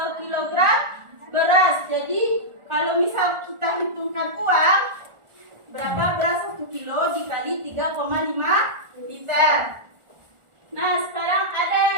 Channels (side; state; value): left; late; 1.4 ms